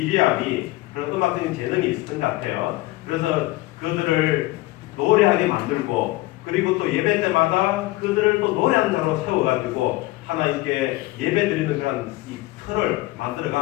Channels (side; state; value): right; quieter; 19.4 dB